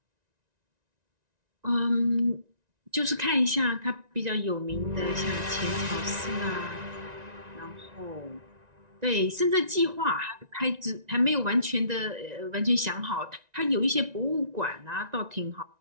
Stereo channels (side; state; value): left; late; 1.9 ms